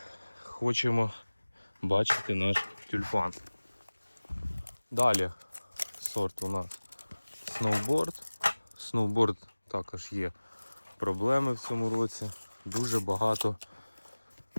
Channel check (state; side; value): inverted; both; correlation -1.00